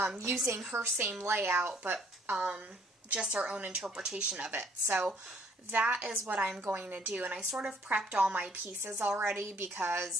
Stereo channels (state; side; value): normal; both; correlation 0.62